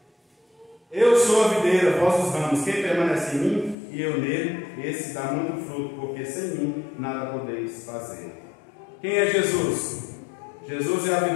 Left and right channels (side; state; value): right; drops out; at 3.8 s